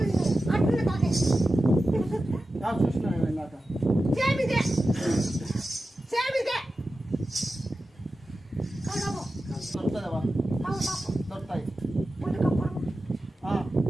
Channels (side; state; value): both; normal; correlation 0.93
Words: చూసినా ఇందాక దొరుకుతుందేవా? దొరుకుతాయి